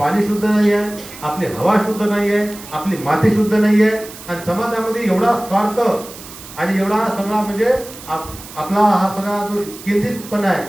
शुद्ध नाही आहे, आपली हवा शुद्ध नाही आहे, आपली माती शुद्ध नाही आहे, आणि समाजामध्ये एवढा स्वार्थ आणि एवढा सगळा म्हणजे आपला हा सगळा जो केंद्रितपणा आहे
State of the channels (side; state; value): right; noise; hiss, 16 dB below the sound